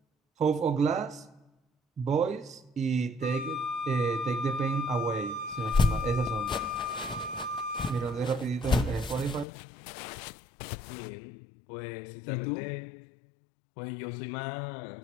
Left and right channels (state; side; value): drops out; right; at 9.5 s